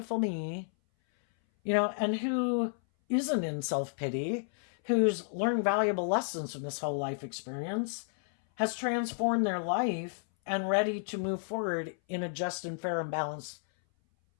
me. And who isn't in self-pity, who's learned valuable lessons from this whole life experience, has transformed their life and ready to move forward in a just and fair and balanced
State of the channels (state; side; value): silent; right; 57 dB below the other